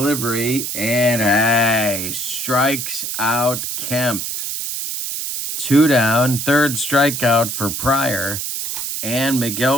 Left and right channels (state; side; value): noise; right; hiss, 4 dB below the sound